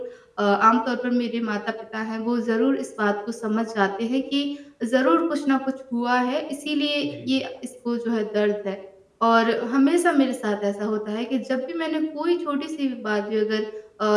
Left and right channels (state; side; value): identical; both; correlation 1.00